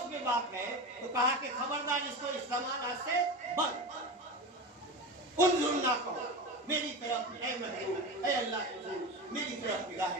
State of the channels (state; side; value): normal; both; correlation 0.25